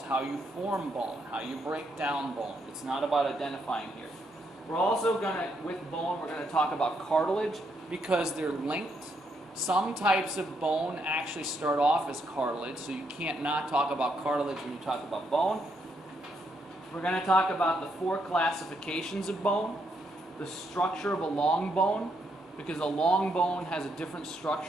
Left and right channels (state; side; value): normal; both; correlation 0.77